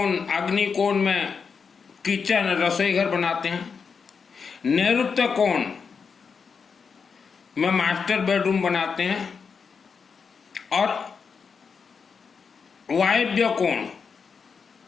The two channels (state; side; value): quieter; right; 5.7 dB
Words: कोण में किचन रसोई घर बनाते हैं। नैऋत्य कोण में मास्टर बेडरूम बनाते हैं और वायव्य कोण